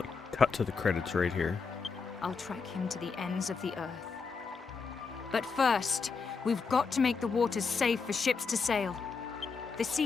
like cut to the credits right here. I'll track him to the ends of the earth. But first, we've got to make the waters safe for ships to sail. The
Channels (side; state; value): right; quieter; 5.1 dB